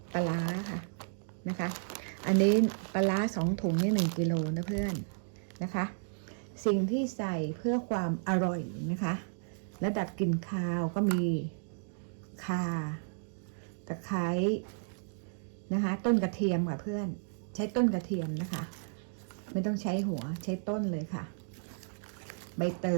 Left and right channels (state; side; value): silent; left; digital silence